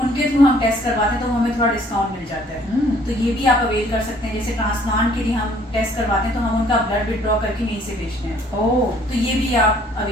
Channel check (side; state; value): both; normal; correlation 0.59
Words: थ्रू हम टेस्ट करवाते हैं, तो हमें थोड़ा डिस्काउंट मिल जाता है। तो ये भी आप अवेल कर सकते हैं। जैसे ट्रांसप्लांट के लिए हम टेस्ट करवाते हैं, तो हम उनका ब्लड विड्रॉ करके यहीं से भेजते हैं। ओह, तो ये भी आप